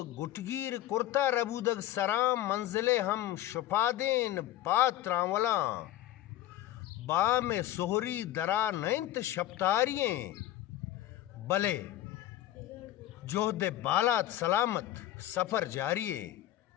گٹگیر کرتا ربودگ سرام منزلے ہم شپادین پاتراں ولاں با میں سہری درا نینت شپتارییں بلے جوہد بالات سلامت سفر جاریے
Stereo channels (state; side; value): quieter; right; 13.8 dB